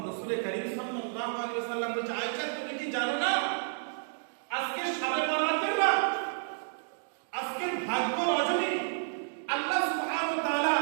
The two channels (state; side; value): silent; left; digital silence